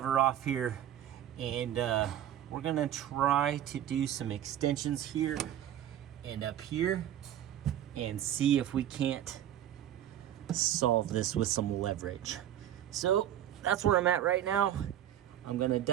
off here, and we're going to try to do some extensions here and up here and see if we can't solve this with some leverage. So that's where I'm at right now. I'm going to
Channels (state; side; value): quieter; left; 11.4 dB